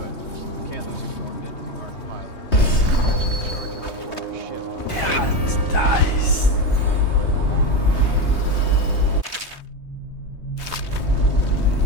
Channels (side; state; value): right; late; 3.2 ms